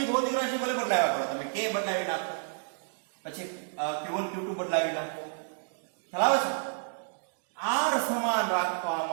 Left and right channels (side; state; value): left; silent; digital silence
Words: ભૌતિક રાશિ ભલે બદલાવ્યા કરો તમે, કે બદલાવી નાખો, પછી Q1 Q2 બદલાવી નાખો, ખ્યાલ આવે છે? R સમાન